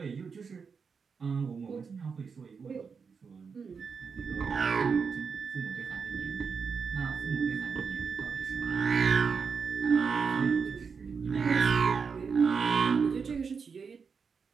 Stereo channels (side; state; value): left; quieter; 5.7 dB